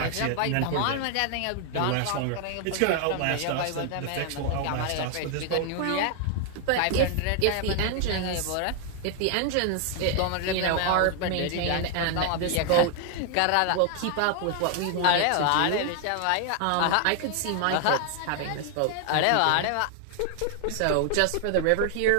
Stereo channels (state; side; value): different; both; correlation 0.00